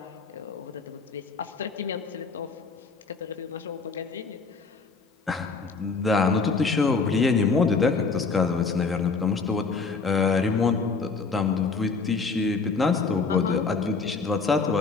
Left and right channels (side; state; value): right; quieter; 4.5 dB